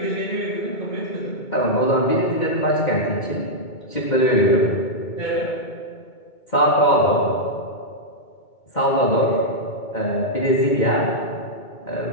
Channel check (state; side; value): late; right; 2.2 ms